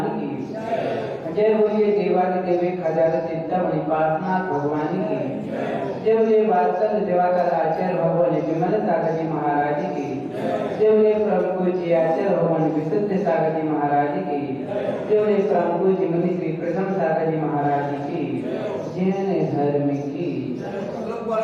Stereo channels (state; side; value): identical; both; correlation 1.00